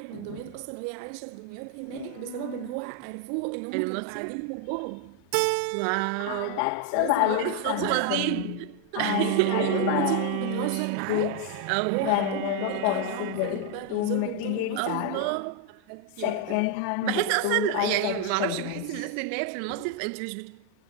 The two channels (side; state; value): both; different; correlation 0.00